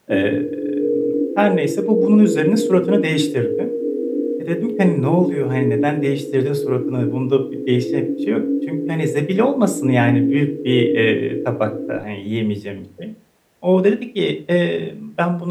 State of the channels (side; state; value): both; identical; correlation 1.00